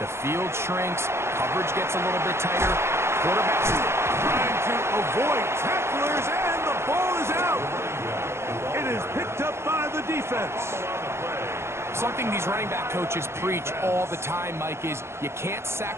field shrinks, coverage gets a little bit tighter, quarterbacks trying to avoid tacklers, and the ball is out. It is picked up by the defense. Something these running back coaches preach all the time, Mike, is you can't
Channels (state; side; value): late; left; 0.13 ms